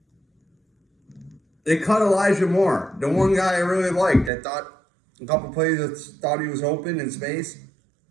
They cut Elijah Moore, the one guy I really liked. I thought a couple plays that thought he was open in space.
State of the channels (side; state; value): left; drops out; at 4.3 s